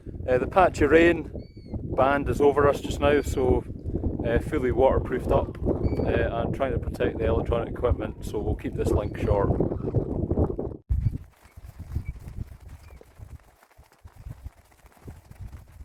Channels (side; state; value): both; identical; correlation 1.00